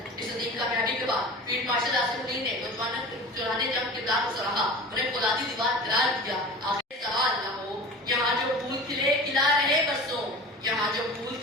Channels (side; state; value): both; normal; correlation 0.36